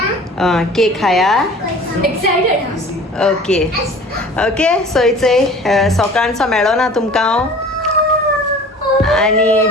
केक खाया. एक्साइटेड हा. ओके ओके सो इचय सकाळचो मेळो ना तुमकां हांव आनी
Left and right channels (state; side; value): normal; both; correlation 0.44